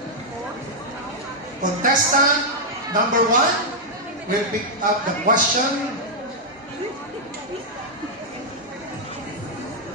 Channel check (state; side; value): normal; both; correlation -0.05